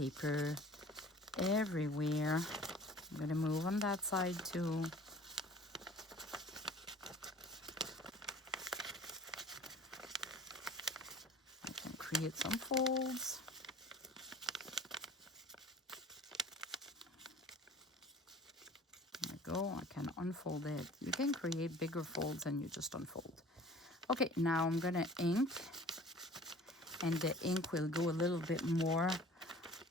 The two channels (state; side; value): normal; both; correlation 0.47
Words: everywhere. I'm going to move on that side too. I can create some folds. There we go. I can unfold it. You can create bigger folds and you just unfold. Okay, now I'm going to ink. And the ink will go a little bit more